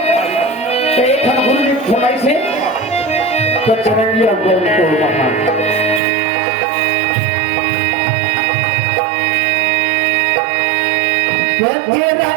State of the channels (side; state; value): left; drops out; at 6.0 s